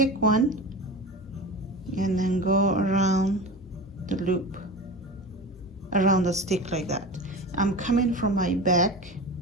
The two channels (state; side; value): normal; both; correlation 0.30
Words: one and then go around the loop, around the stick like that. I'm coming from my back